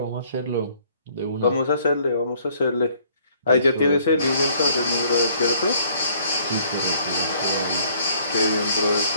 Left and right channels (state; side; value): inverted; both; correlation -0.61